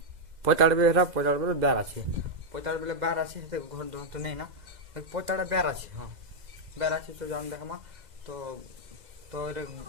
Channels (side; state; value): left; late; 2.0 ms